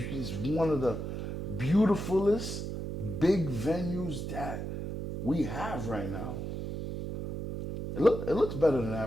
is one of the beautifulest big venues that we have right now. It looks better than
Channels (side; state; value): right; noise; hum, 5 dB below the sound